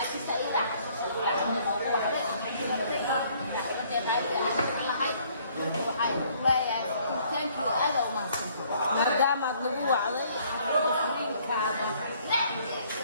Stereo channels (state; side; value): inverted; both; correlation -0.62